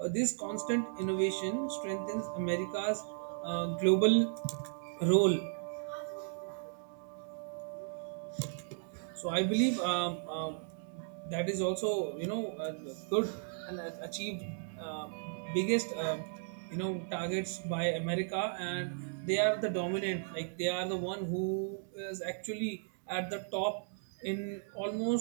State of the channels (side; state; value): left; silent; digital silence